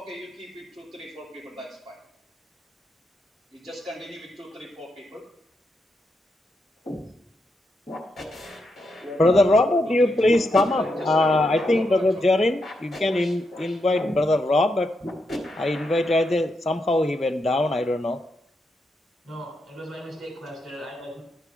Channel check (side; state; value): both; normal; correlation 0.82